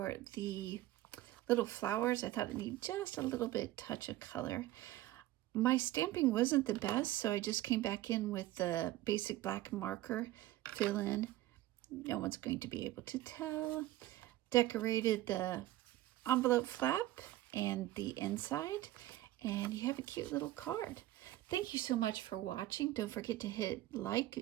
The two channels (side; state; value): left; quieter; 15.8 dB